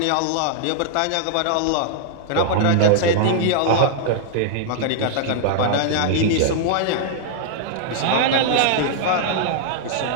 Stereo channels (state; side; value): different; both; correlation -0.01